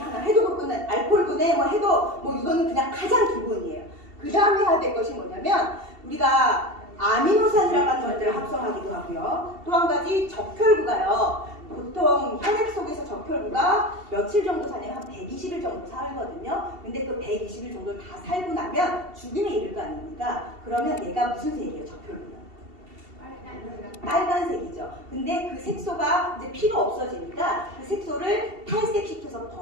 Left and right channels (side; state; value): left; late; 2.7 ms